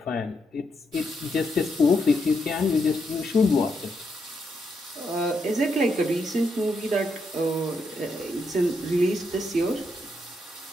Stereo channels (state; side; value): normal; both; correlation 0.80